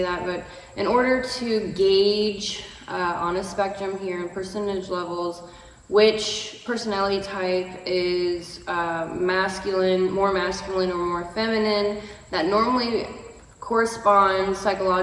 that, but in order to gauge on a spectrum here in percentage levels, which personality type is masculine, more masculine or more feminine, that normally corresponds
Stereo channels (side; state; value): both; identical; correlation 1.00